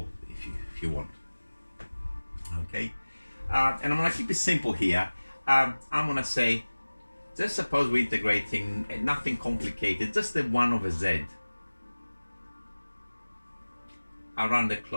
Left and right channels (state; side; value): inverted; both; correlation -1.00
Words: if you want. Okay, and I'm gonna keep it simple here. I'm gonna say, just suppose we're integrating nothing complicated, just the 1 over z around the